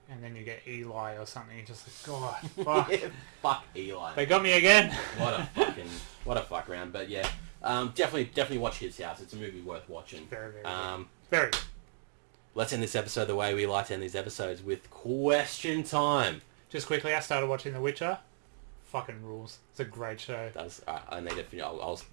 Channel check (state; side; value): silent; left; digital silence